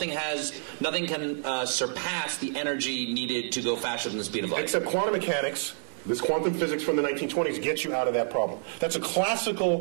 can surpass the energy needed to go faster than the speed of light. Except quantum mechanics. This quantum physics from the 1920s gets you out of that problem. That's a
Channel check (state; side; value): silent; left; digital silence